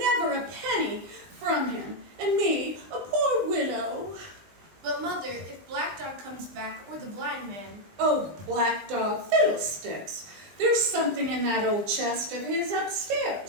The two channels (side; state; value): left; late; 20 ms